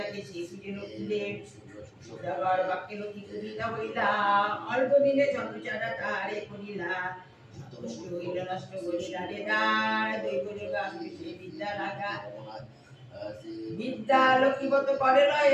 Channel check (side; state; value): both; identical; correlation 1.00